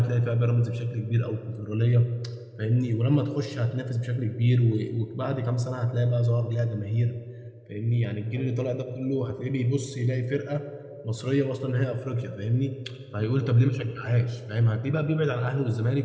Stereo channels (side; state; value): both; identical; correlation 1.00